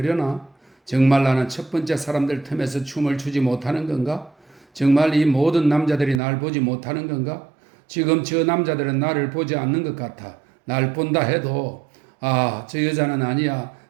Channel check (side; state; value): left; drops out; at 6.2 s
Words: 정말 나는 첫 번째 사람들 틈에서 춤을 추지 못하는 건가? 정말 이 모든 남자들이 날 보지 못하는 건가? 지금 저 남자들은 나를 보지 않는 것 같아. 날 본다 해도 저 여자는 아니야.